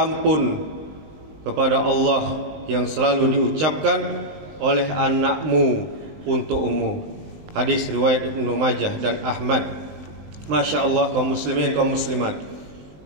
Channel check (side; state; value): left; late; 20 ms